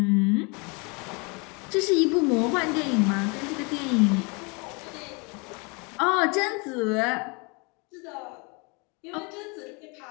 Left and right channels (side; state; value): right; quieter; 30.5 dB